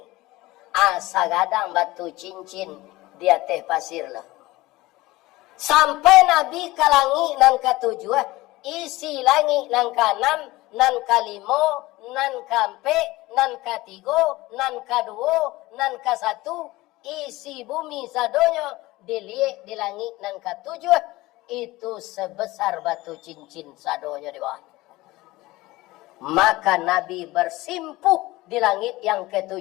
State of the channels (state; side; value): quieter; right; 19.3 dB